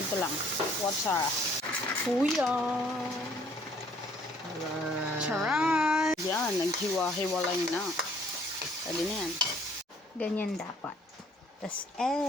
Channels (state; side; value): normal; both; correlation 0.60